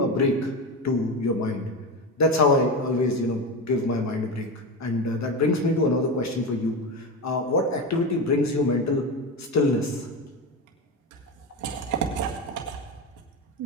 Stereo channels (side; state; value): both; normal; correlation 0.19